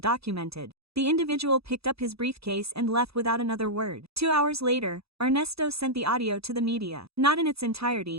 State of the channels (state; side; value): late; left; 0.77 ms